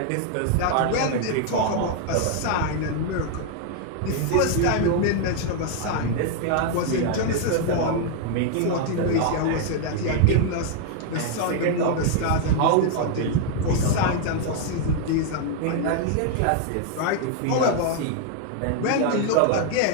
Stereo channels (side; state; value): both; different; correlation 0.00